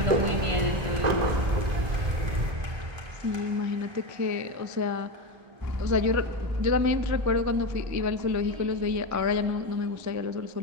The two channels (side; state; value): left; late; 1.9 ms